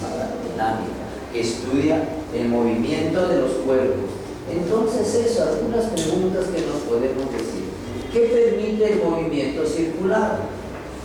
dinámica, que estudia el movimiento de los cuerpos. Entonces eso, algunas preguntas que nos podemos decir. ¿Qué permite el movimiento circular?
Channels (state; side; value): identical; both; correlation 1.00